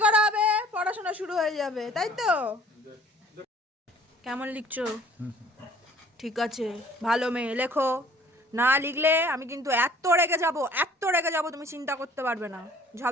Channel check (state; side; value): normal; both; correlation 0.53